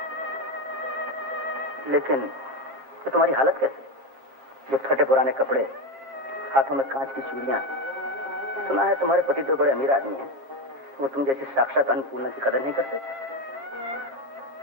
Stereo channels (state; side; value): late; left; 21 ms